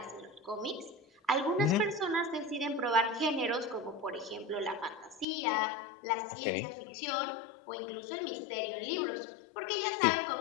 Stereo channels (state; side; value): drops out; right; at 5.2 s